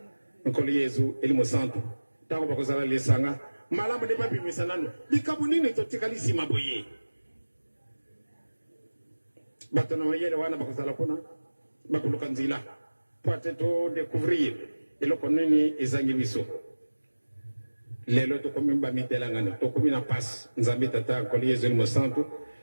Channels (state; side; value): inverted; both; correlation -1.00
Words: nkolo yezu eli mosantu ntango bakozala lesanga malamu nde babimisa nano likambo nini totikali nsima boye bato na mayele wana bakozala kuna bakoluka nzela po ate todécouvrir eloko nini ezangi biso lelo tokomi bamitelangano tokomi na pasi nzambe tata nkolo yezu eli mosantu